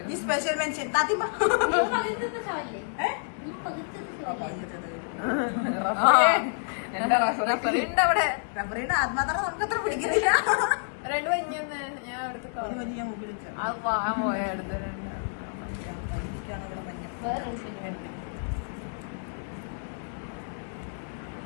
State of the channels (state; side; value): silent; right; digital silence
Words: ഈ സ്പെഷ്യൽ മെൻഷൻ താത്തിമ്മ. റഫറിണ്ട് അവിടെ. റഫറിന്റെ ആത്മാർത്ഥത നമുക്ക് അത്ര പിടിക്കുന്നില്ല. രണ്ടു കഴിഞ്ഞെന്ന് ഞാൻ എടുത്ത് ഒരു മഞ്ഞ് ഞാൻ മുമ്പിൽ വെച്ചു. അത് പാഴം പോയ അടുത്ത് കയ്യിലേക്കാണ് ഇവിടെ മഞ്ഞ്.